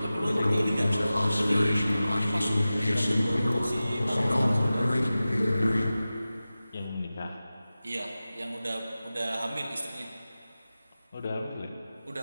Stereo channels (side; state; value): both; inverted; correlation -0.96